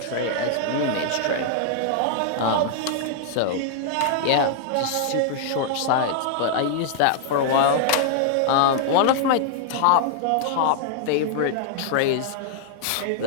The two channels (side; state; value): both; different; correlation -0.01